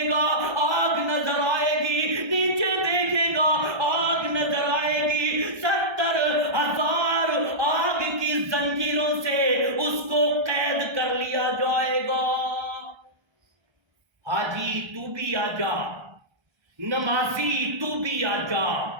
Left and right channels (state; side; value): late; left; 1.3 ms